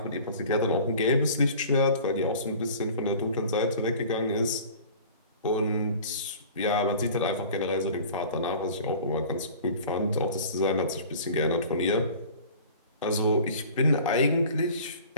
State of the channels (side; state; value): both; inverted; correlation -0.44